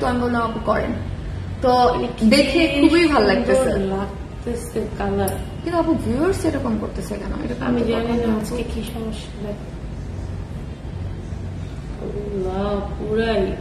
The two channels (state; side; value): identical; both; correlation 1.00